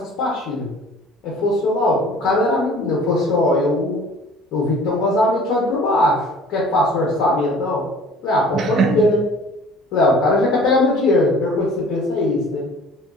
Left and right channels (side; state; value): both; normal; correlation 0.48